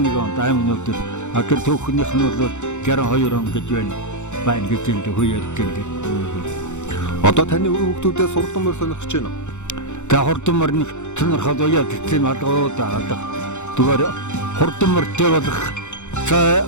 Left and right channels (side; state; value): right; late; 0.84 ms